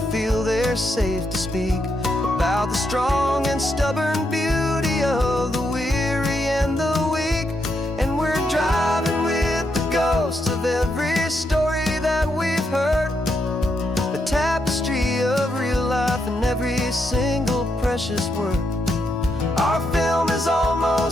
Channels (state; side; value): normal; both; correlation 0.80